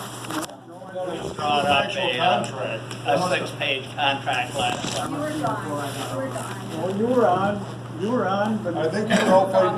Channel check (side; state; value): both; identical; correlation 1.00